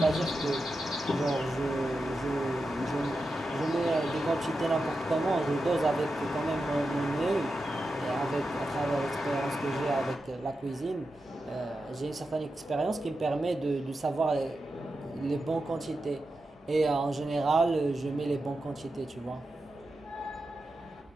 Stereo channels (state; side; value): normal; both; correlation 0.90